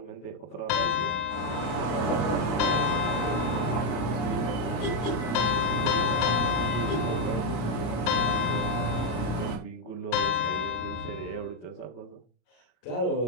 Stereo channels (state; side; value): late; right; 33 ms